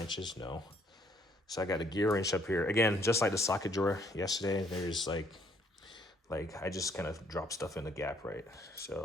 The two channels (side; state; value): both; normal; correlation 0.65